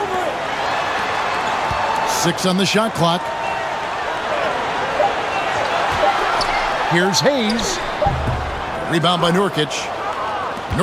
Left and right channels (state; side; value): identical; both; correlation 1.00